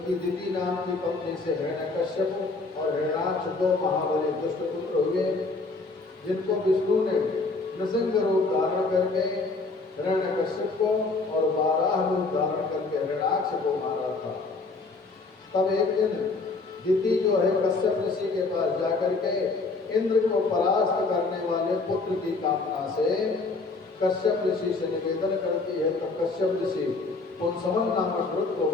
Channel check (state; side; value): quieter; right; 3.7 dB